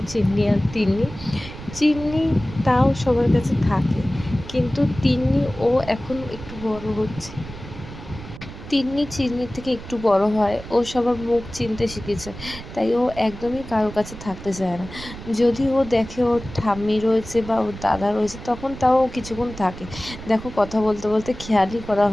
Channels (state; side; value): noise; right; rumble, 13 dB below the sound